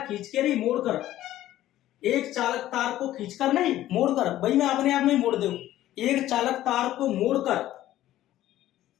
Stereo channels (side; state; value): right; quieter; 13.9 dB